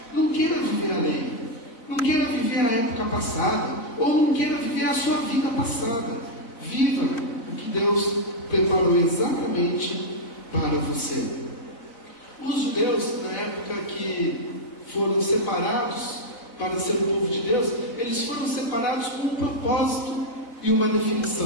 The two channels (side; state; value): right; late; 4.1 ms